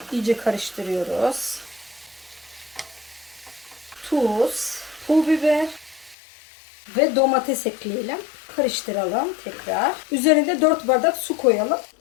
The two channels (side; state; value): right; drops out; at 6.2 s